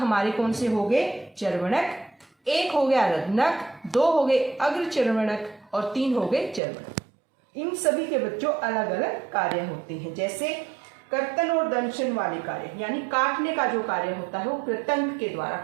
कौन से हो गए? चर्वणक, 1 हो गया रदनक, 2 हो गए अग्रचर्वणक और 3 हो गए चर्वणक। इन सभी के बच्चों अलग अलग कार्य होते हैं। जैसे कर्तन और दंशन वाले कार्य यानी काटने का जो कार्य होता है वो कृतंक के द्वारा।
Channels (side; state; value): left; drops out; at 6.6 s